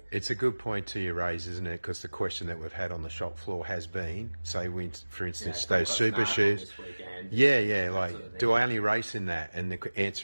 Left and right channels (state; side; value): inverted; both; correlation -1.00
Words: it's a good point to you raise, isn't it? Because the question that we've had on the shop floor has been, say, for instance, those super shoes. Yeah, like, do I only race in that? And the